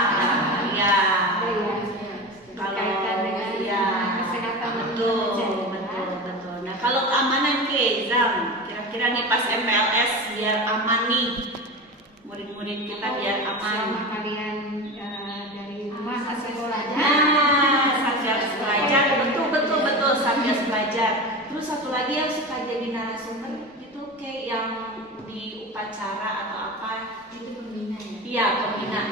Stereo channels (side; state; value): both; normal; correlation 0.27